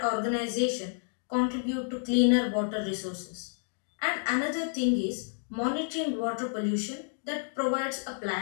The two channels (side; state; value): right; silent; digital silence